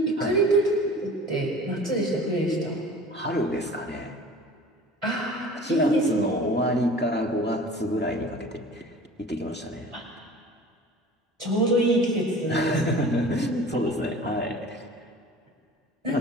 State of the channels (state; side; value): normal; both; correlation 0.43